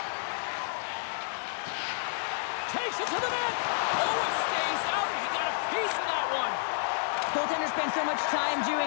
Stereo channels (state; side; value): silent; right; digital silence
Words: Takes it to the net. Oh, it stays out. He got a piece of that one. Goaltender spends so much time